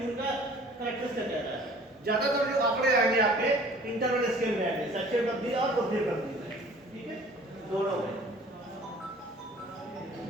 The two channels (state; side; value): normal; both; correlation 0.50